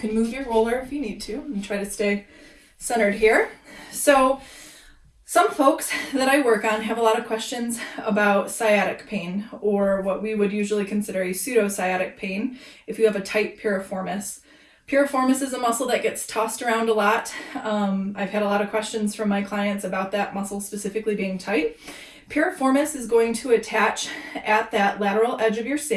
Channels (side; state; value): both; identical; correlation 1.00